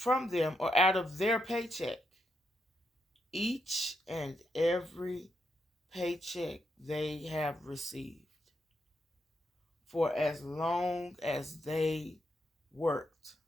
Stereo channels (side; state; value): both; normal; correlation 0.81